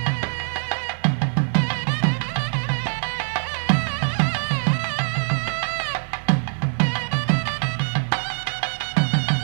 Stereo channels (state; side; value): silent; left; 63 dB below the other